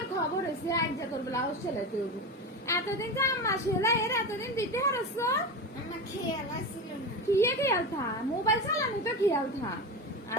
খবর হয়েছে আজ যা তোর ব্লাউজ সেলাইতে হবো এতদিন যে আম্মা সেলাই এর এতদিন দিতে হারছ আমার খেয়াল আসছিল না। কিয়ে খেয়াল থা মোবাইল চালানি তো খেয়াল থা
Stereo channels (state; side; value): normal; both; correlation 0.23